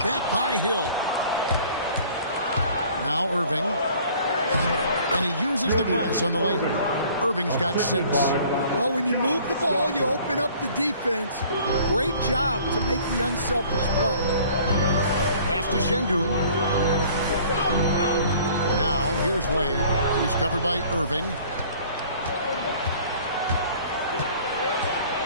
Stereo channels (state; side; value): inverted; both; correlation -0.52